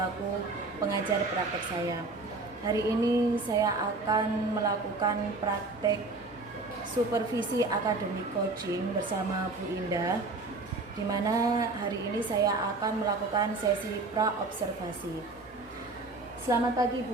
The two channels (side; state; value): left; quieter; 3.4 dB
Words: pengajar praktek saya. Hari ini saya akan melakukan praktek supervisi akademik coaching bersama Bu Indah, di mana hari ini saya akan melakukan sesi pra-observasi. Selamat pagi